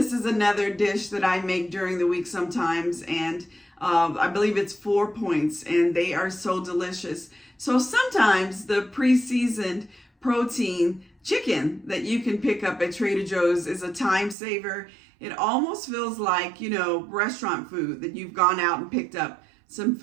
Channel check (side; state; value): left; drops out; at 14.4 s